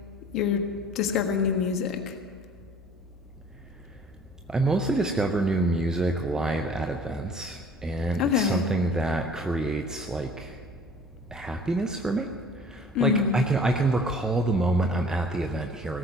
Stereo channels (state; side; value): normal; both; correlation 0.49